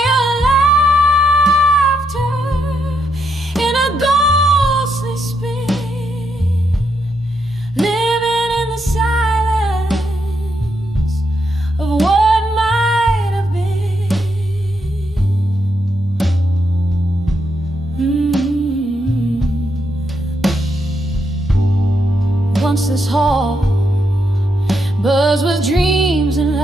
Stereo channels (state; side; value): normal; both; correlation 0.79